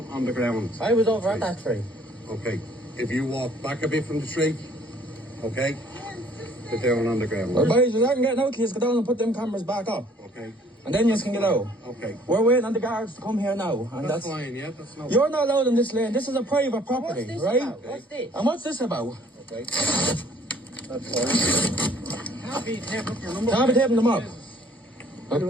on the ground. I was over at that tree. Okay, if you walk back a bit from the tree, okay, they're down on the ground. Well, boys, I can get out, please go down and put them cameras back up. Okay. And then you can get out. Okay. We're waiting on the guards to come here now. And that's fine, yeah, that's no. You're not allowed in this lane. This is a private property, What's this right? about? What's this? And what's this about? Okay. That's fine. Can't be taping up your number. Can't be taping them up.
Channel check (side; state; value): both; normal; correlation 0.58